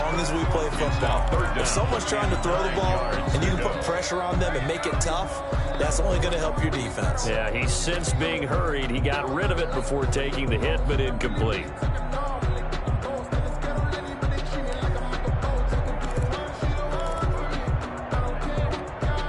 as we play football. If someone's trying to throw the ball and you can put pressure on them and make it tough, that's only going to help your defense. Yeah, he's since being hurried. He got rid of it before taking the hit, but incomplete.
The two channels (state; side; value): identical; both; correlation 1.00